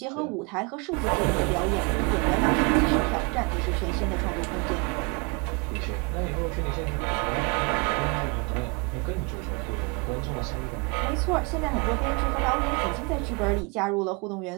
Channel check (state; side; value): quieter; left; 31.1 dB